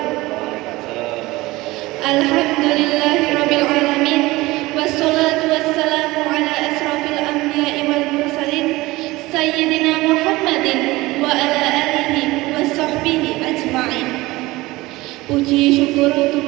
Alhamdulillahirabbil alamin wassalatu wassalamu ala asrofil anbiya'i wal mursalin sayyidina Muhammadin wa ala alihi wa sahbihi ajma'in. Puji syukur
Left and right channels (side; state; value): left; quieter; 20.0 dB